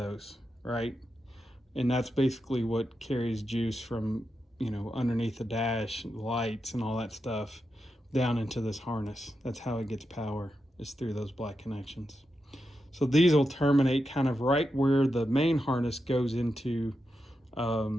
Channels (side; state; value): both; normal; correlation 0.87